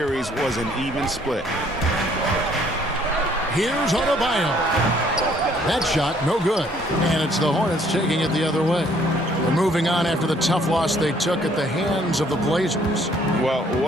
was an even split. Here's Adebayo. That shot, no good. And it's the Hornets taking it the other way. They're moving on after the tough loss they took at the hands of the Blazers. Well,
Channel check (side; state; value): both; normal; correlation 0.62